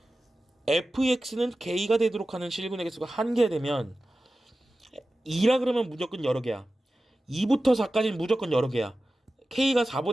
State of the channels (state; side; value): normal; both; correlation 0.95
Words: fx는 k가 되도록 하는 실근의 개수가 한 개 되면 2라 그러면 무조건 여러 개야. 2부터 4까지는 무조건 여러 개야. k가